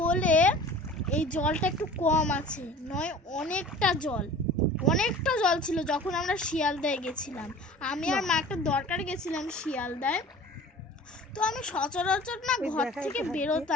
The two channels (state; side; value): normal; both; correlation 0.43